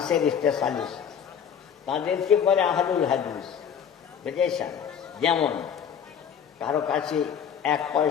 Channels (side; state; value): right; quieter; 7.9 dB